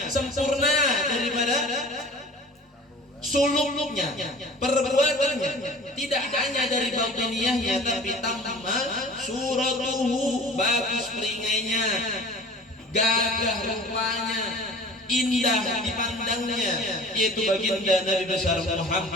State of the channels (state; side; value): normal; both; correlation 0.42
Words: sempurna daripada suluknya, perbuatannya, tidak hanya dari batiniyahnya tapi tamma suratuhu, bagus peringainya, gagah rupanya, indah dipandangnya, yaitu baginda Nabi besar